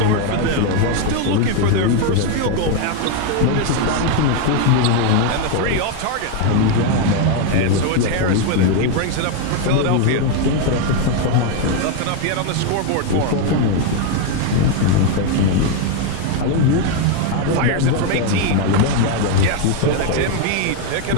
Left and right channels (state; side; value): different; both; correlation 0.01